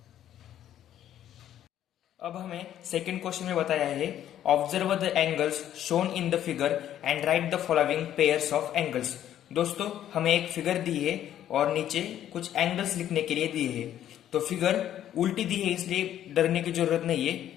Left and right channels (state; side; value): quieter; right; 11.3 dB